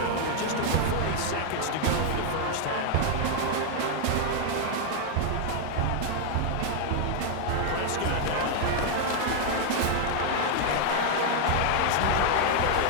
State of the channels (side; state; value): both; different; correlation 0.00